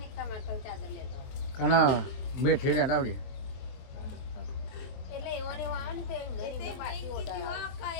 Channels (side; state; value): right; late; 23 ms